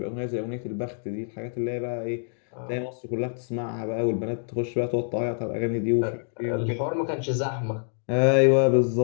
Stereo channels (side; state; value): right; silent; digital silence